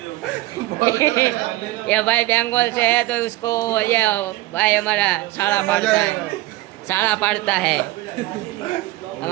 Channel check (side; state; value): left; quieter; 18.1 dB